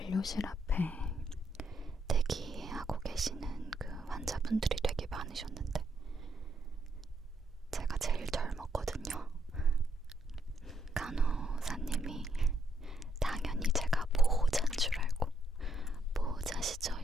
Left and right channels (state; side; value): normal; both; correlation 0.75